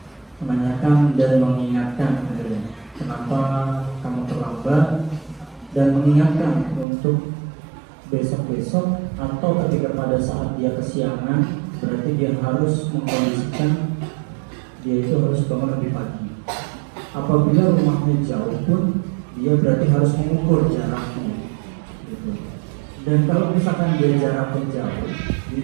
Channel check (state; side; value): drops out; left; at 6.9 s